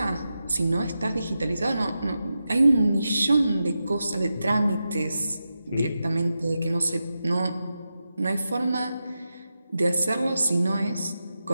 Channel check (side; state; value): both; inverted; correlation -0.90